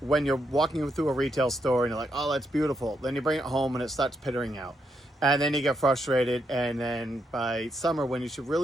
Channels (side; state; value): both; normal; correlation 0.79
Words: you're walking through a retail store and you're like, oh, that's beautiful. Then you bring it home and it starts pittering out. And then you get frustrated. And then by summer, when you should